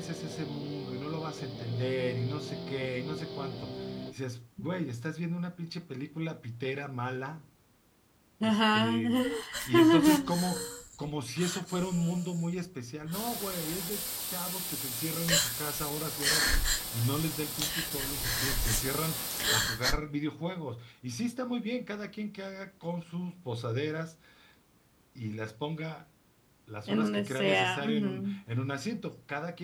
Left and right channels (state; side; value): identical; both; correlation 1.00